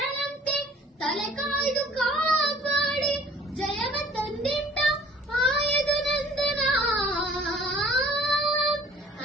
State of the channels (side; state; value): both; normal; correlation 0.52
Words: ತಲೆ ಕಾಯ್ದು ಕಾಪಾಡಿ ಜಯವ ತಂದಿಟ್ಟ ಆಯದು ನಂದನ.